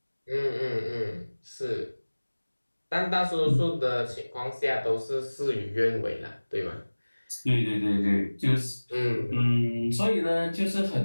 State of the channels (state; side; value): inverted; both; correlation -1.00